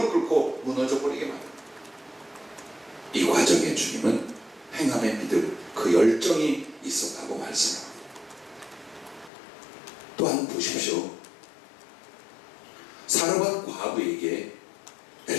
꿇고 무너져 버리게 만듭니다. 이 과정에 주님은 행함의 믿음, 그 열정이 있었다고 말씀합니다. 또한 보십시오. 사르밧 과부에게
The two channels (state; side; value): drops out; right; at 9.3 s